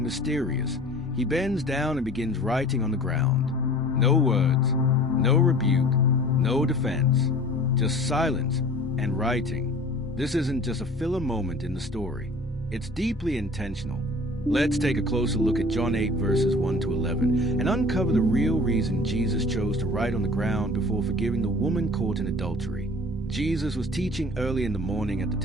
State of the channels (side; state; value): both; normal; correlation 0.44